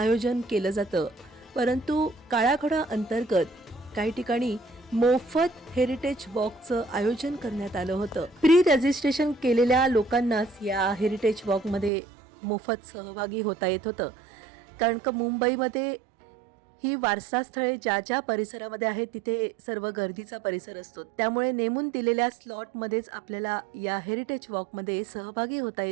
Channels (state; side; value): drops out; left; at 11.9 s